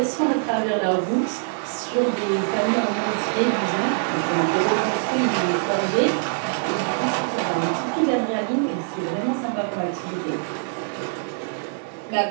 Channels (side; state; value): left; silent; digital silence